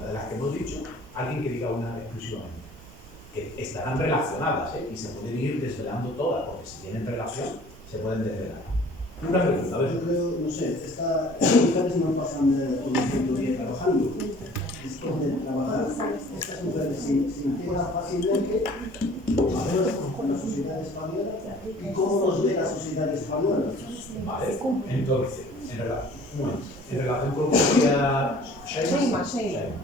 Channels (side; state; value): both; normal; correlation 0.50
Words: de las que hemos dicho, alguien que diga una exclusivamente. Que estarán relacionadas, y se pueden ir desvelando todas, porque si tienen relación, se pueden desvelar. Una pregunta, a ver. Yo creo, no sé, estas mujeres no pasan todo el tiempo día trabajando. Es que de trabajar, estas mujeres se integran fácilmente con la sociedad española y cómo nos ve la sociedad española. Vale, entonces, en relación con lo que decía Shaima,